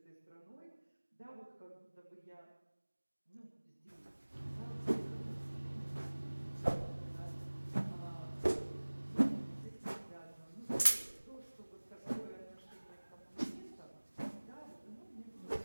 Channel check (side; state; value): both; inverted; correlation -1.00